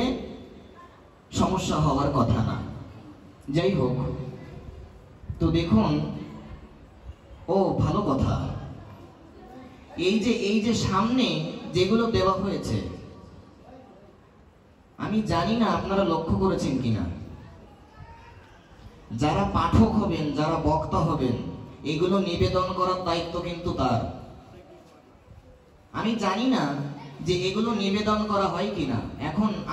সমস্যা হওয়ার কথা না। যাই হোক, তো দেখুন, ও ভালো কথা, এই যে সামনে যেগুলো দেওয়া হয়েছে, আমি জানি না আপনারা লক্ষ্য করেছেন কিনা, যারা পাঠক হবেন, যারা বক্তা হবেন, এগুলো নিবেদন করার দায়িত্ব কিন্তু তার। আমি জানি না যে এগুলো নিবেদন করা হয় কিনা, এখন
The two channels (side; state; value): both; identical; correlation 1.00